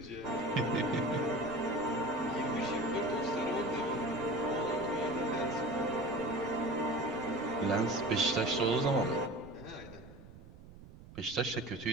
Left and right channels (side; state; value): right; noise; rumble, 19 dB below the sound